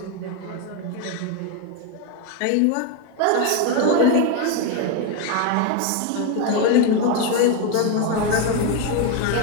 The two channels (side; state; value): both; different; correlation 0.02